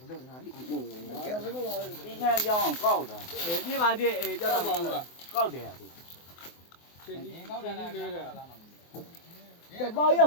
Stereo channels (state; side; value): late; right; 24 ms